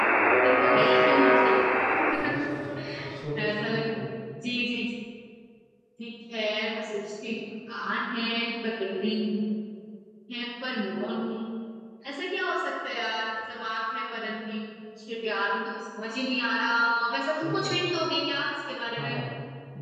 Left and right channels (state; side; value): identical; both; correlation 1.00